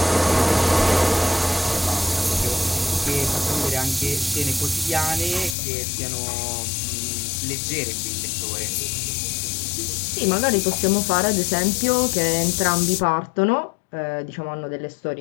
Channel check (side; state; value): right; drops out; at 5.6 s